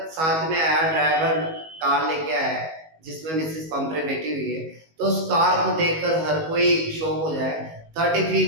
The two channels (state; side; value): late; left; 19 ms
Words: साथ में आया, ड्राइवर कार लेके आया जिसमें मिसेस पंपरे बैठी हुई है, तो उस कार को देखकर हर कोई शॉक हो जाए। 30